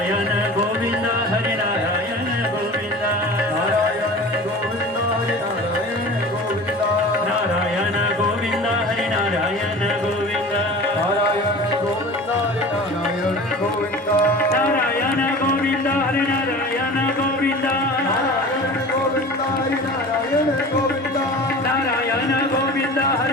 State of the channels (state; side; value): normal; both; correlation 0.38